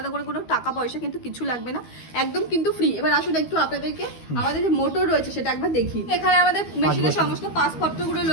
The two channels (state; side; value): late; right; 12 ms